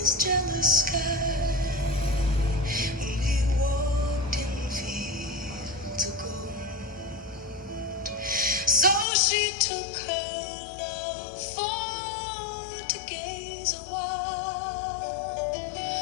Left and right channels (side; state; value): right; drops out; at 9.1 s